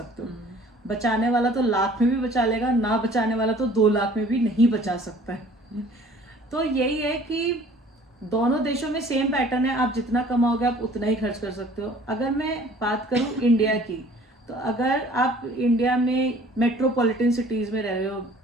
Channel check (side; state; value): both; normal; correlation 0.52